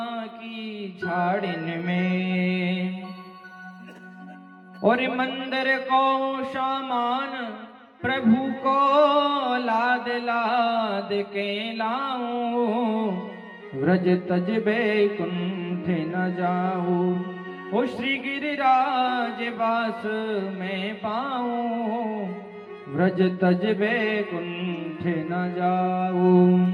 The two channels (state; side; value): identical; both; correlation 1.00